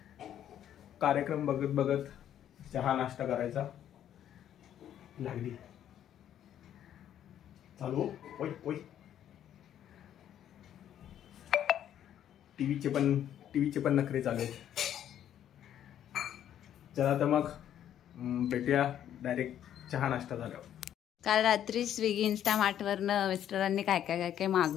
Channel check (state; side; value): quieter; right; 10.5 dB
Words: कार्यक्रम बघत बघत चहा नाश्ता करायचा. लागली चालू. ओय ओय, टीव्हीचे पण नखरे चालू आहेत. चला तर मग भेटूया डायरेक्ट चहा नाश्ता झाल्यावर. काल रात्री स्विगी इन्स्टामार्टवरनं मिस्टरांनी काय काय काय काय